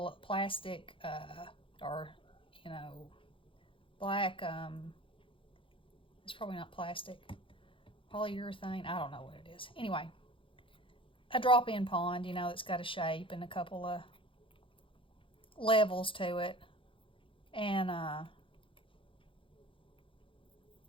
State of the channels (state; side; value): late; right; 0.25 ms